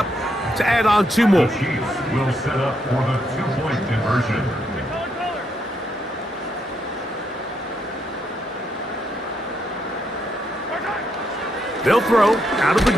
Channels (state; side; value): normal; both; correlation 0.77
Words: to add on 2 more. Will set up for the 2-point conversion. They'll throw out of the